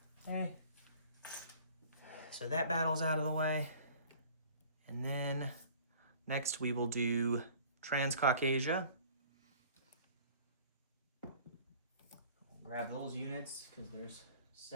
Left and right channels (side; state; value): both; inverted; correlation -0.50